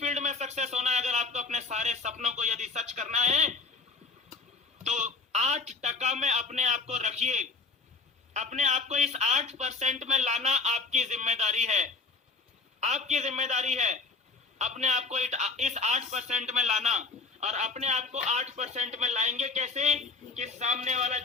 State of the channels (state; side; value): quieter; right; 4.1 dB